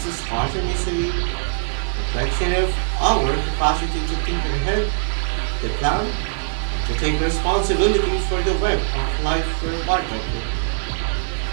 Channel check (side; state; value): left; silent; 61 dB below the other